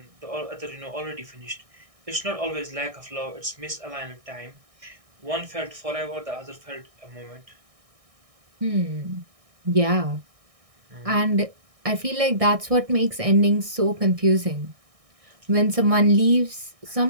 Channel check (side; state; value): left; late; 1.6 ms